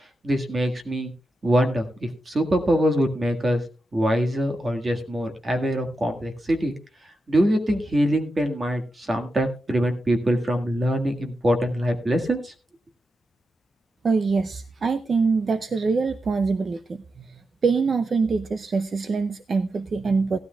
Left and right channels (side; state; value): both; normal; correlation 0.88